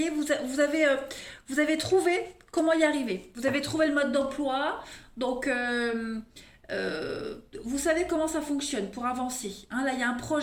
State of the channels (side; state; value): both; identical; correlation 1.00